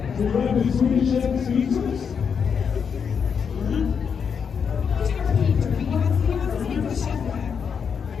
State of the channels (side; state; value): right; quieter; 6.6 dB